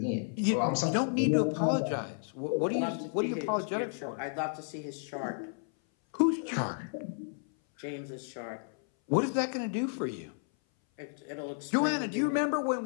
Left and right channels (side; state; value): right; silent; 56 dB below the other